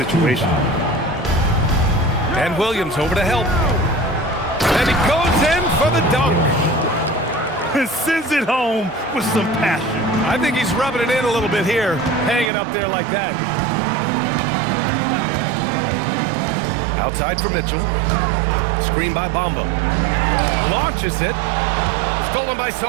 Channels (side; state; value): left; drops out; at 12.5 s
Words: And Williams over to help. And he goes in for the dunk. Sends it home with some passion. I think he's rubbing it in a little bit here, hanging up there like that. Outside for Mitchell. Screen by Bamba. Launches it. Stolen by